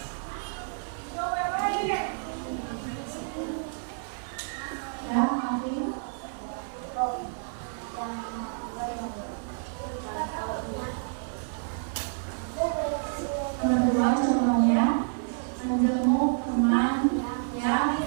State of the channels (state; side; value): silent; left; 59 dB below the other